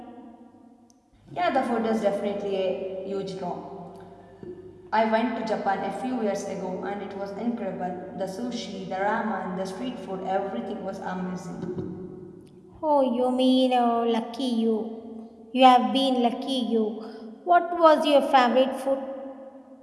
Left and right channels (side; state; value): both; identical; correlation 1.00